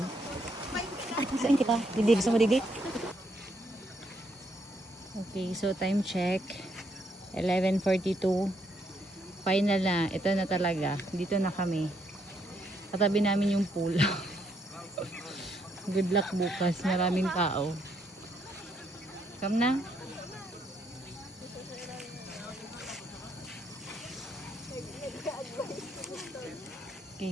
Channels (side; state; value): both; normal; correlation 0.73